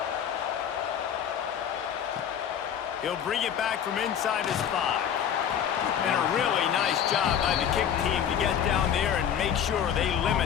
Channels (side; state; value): right; quieter; 8.9 dB